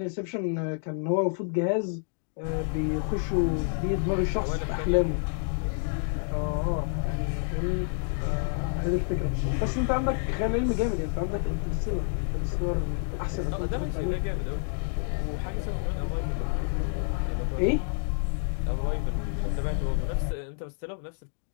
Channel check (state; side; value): silent; right; 59 dB below the other